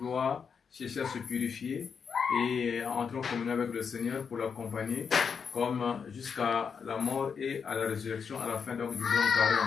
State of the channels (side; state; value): right; quieter; 6.3 dB